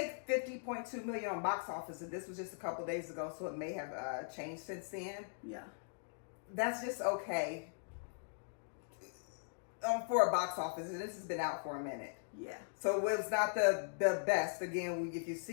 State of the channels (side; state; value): right; silent; digital silence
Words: $50.2 million on box office, and this was just a couple days ago, so it may have changed since then. Yeah. That's just okay for a box office, and this has been out for a minute. Yeah. So it was not the best. Again, if you've